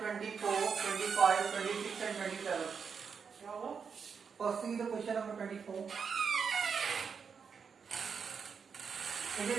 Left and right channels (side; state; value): left; quieter; 6.1 dB